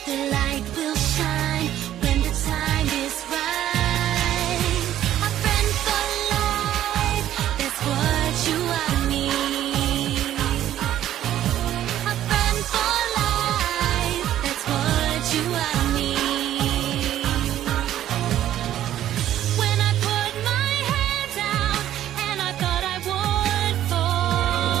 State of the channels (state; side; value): quieter; left; 12.1 dB